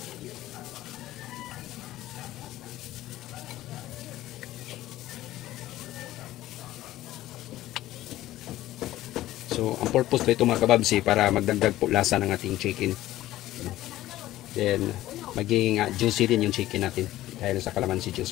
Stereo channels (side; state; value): right; quieter; 15.1 dB